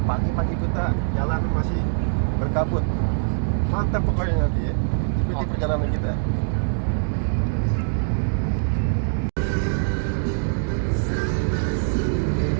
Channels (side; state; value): left; silent; digital silence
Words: pagi-pagi kita jalan masih berkabut. Mantap pokoknya nanti ya. Ikuti perjalanan kita.